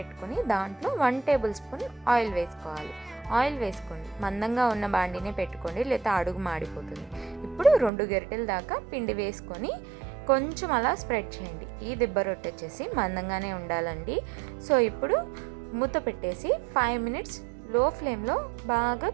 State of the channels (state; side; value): drops out; left; at 7.9 s